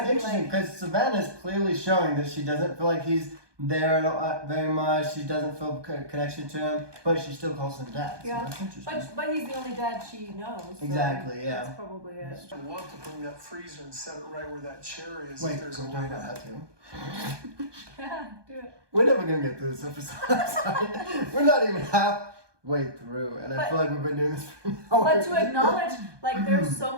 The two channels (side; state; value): left; late; 1.2 ms